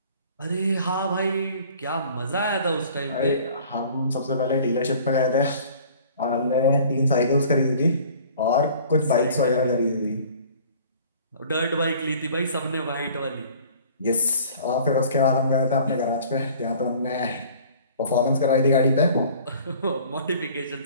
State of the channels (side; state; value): both; inverted; correlation -0.50